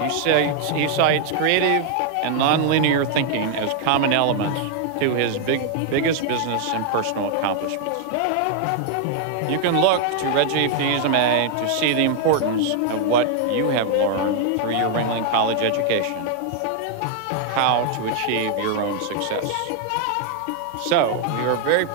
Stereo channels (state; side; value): different; both; correlation 0.00